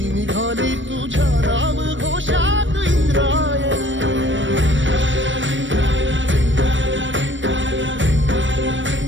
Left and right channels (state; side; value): late; left; 0.55 ms